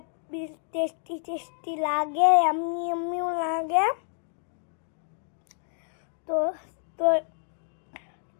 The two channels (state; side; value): silent; right; digital silence